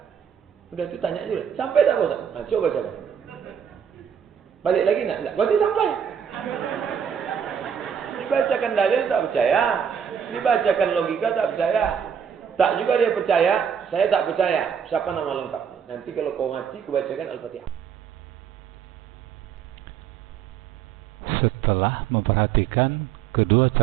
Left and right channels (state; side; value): quieter; left; 7.8 dB